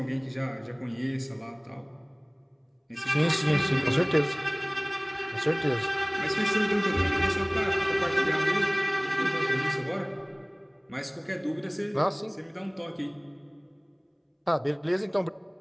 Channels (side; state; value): both; identical; correlation 1.00